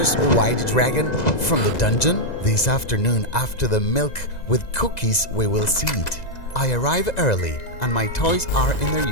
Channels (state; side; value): late; right; 2.0 ms